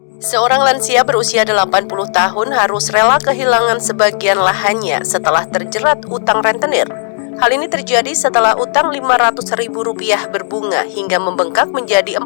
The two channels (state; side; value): silent; right; digital silence